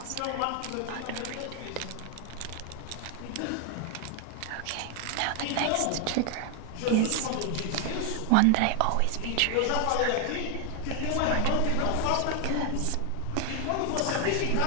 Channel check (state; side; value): different; both; correlation 0.00